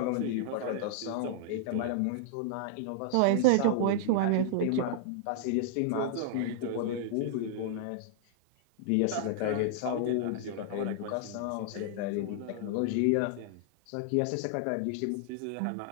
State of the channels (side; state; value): both; different; correlation -0.01